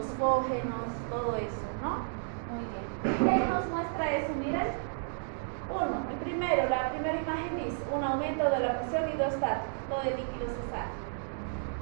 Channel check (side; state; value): left; silent; digital silence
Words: todo eso, ¿no? Muy bien. ¿Qué nos muestra eso? Miren. La primera imagen dice un aumento de la presión hidrostática, todo el líquido se sale.